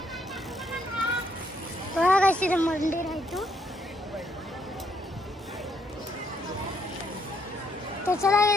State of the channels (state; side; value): normal; both; correlation 0.72